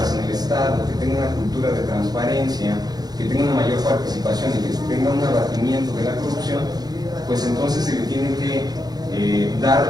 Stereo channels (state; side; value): late; left; 0.19 ms